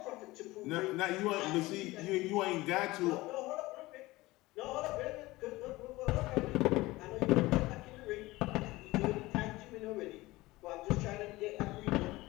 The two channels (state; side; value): quieter; right; 19.7 dB